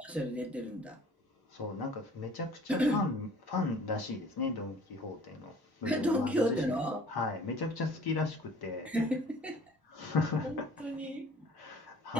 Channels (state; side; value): normal; both; correlation 0.50